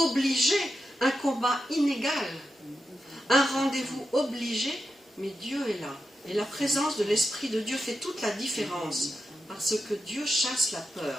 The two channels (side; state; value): both; normal; correlation 0.89